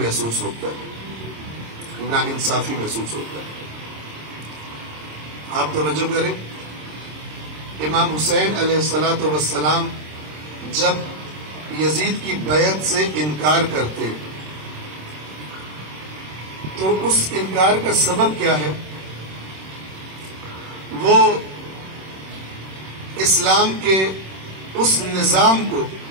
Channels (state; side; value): late; left; 26 ms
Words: ہوتا ہے، ناانصافی محسوس ہوتا ہے. آپ توجہ کریں، امام حسین علیہ الصلوۃ والسلام جب یزید کی بیعت سے انکار کرتے تو اس انکار کا سبب کیا ہے؟ وہ اسلام کے اس نظام کو،